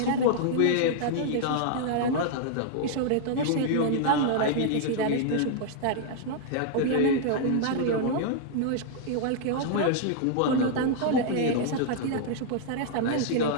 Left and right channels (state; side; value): different; both; correlation -0.01